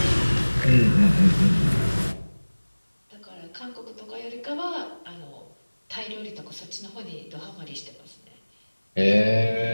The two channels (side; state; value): both; inverted; correlation -1.00